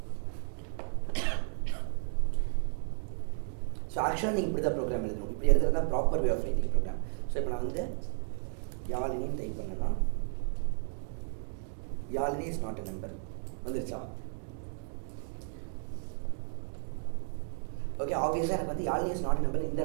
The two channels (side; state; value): left; silent; digital silence